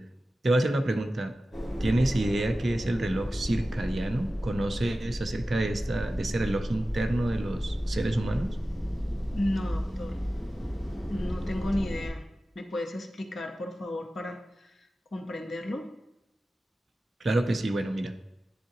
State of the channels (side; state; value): both; normal; correlation 0.95